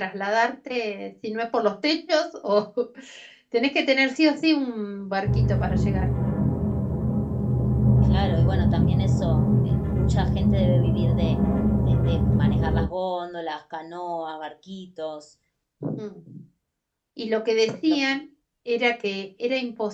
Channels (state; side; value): identical; both; correlation 1.00